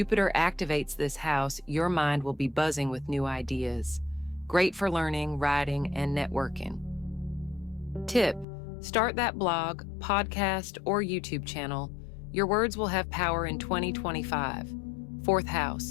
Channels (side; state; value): right; drops out; at 8.5 s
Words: activates this house, your mind will be buzzing with new ideas. Great for learning, writing, and networking. Tip: start that blog, podcast, or YouTube channel. Your words will have power in 2025. Fourth